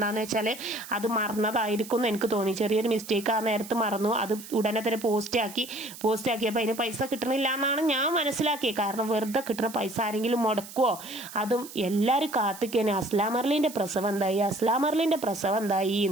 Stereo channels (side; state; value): right; noise; hiss, 15 dB below the sound